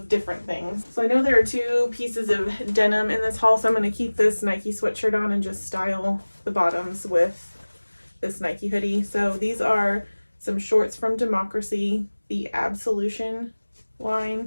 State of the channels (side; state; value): both; inverted; correlation -1.00